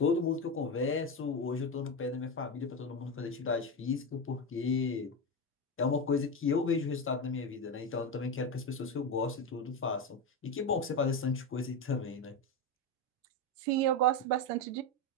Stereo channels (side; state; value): both; normal; correlation 0.14